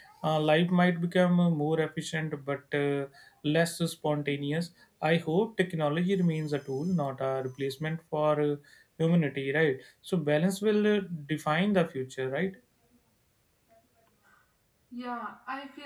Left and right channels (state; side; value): identical; both; correlation 1.00